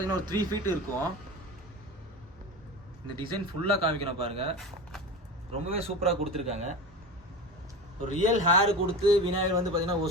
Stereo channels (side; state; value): both; normal; correlation 0.28